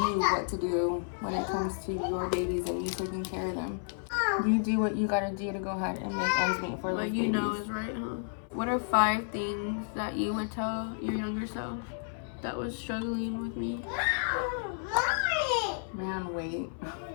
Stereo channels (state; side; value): silent; right; 57 dB below the other